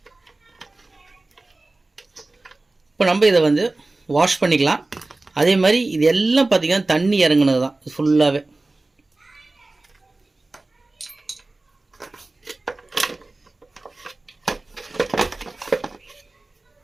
இப்போ நம்ம இதை வந்து வாஷ் பண்ணிக்கலாம். அதே மாதிரி இது எல்லாம் பார்த்திங்கன்னா தண்ணி இறங்குனது தான் ஃபுல்லாகவே.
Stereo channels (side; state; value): left; quieter; 3.1 dB